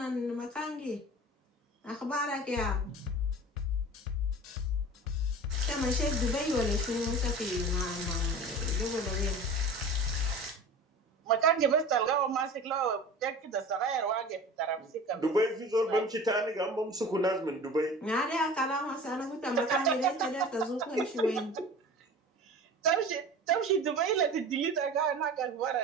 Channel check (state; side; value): normal; both; correlation 0.37